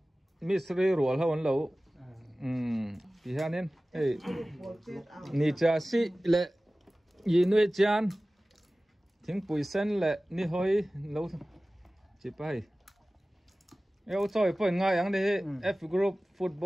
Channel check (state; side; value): normal; both; correlation 0.97